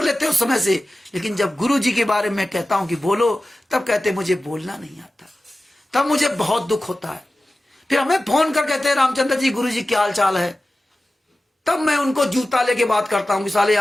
लेते हो समय से। लेकिन जब गुरु जी के बारे में कहता हूं कि बोलो, तब कहते मुझे बोलना नहीं आता, तब मुझे बहुत दुख होता है। फिर हमें फोन कर कहते हैं रामचंद्र जी, गुरु जी क्या हाल चाल है, तब मैं उनको जूता लेके बात करता हूं कि साले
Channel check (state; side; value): normal; both; correlation 0.95